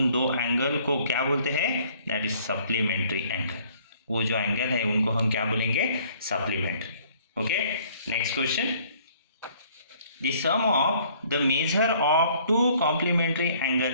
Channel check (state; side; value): inverted; both; correlation -0.59